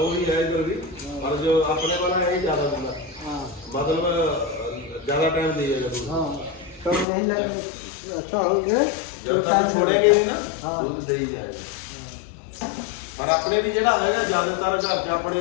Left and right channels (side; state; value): right; drops out; at 7.1 s